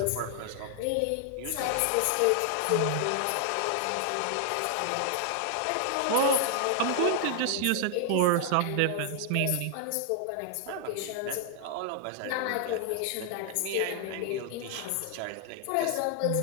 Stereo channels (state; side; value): different; both; correlation 0.00